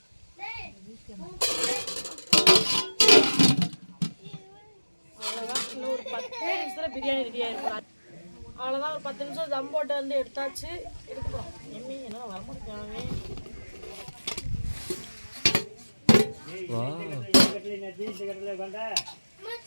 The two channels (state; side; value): inverted; both; correlation -1.00